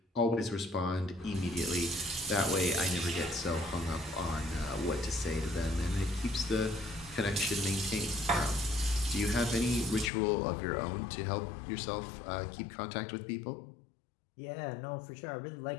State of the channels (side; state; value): right; drops out; at 10.1 s